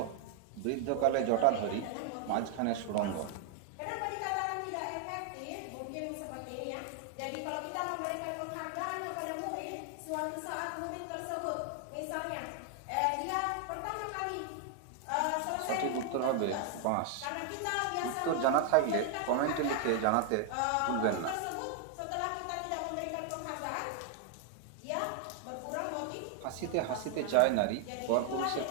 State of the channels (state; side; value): different; both; correlation 0.00